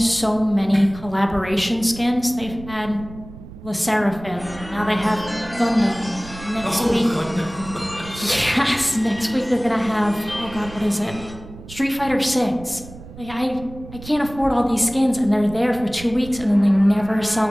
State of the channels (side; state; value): right; noise; rumble, 16 dB below the sound